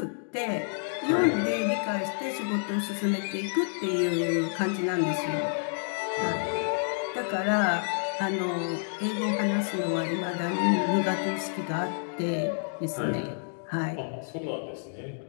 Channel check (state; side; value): silent; right; digital silence